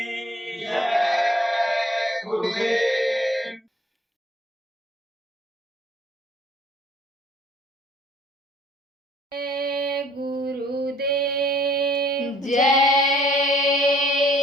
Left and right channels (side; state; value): both; normal; correlation 0.59